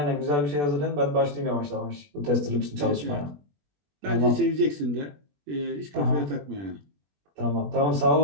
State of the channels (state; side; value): late; left; 21 ms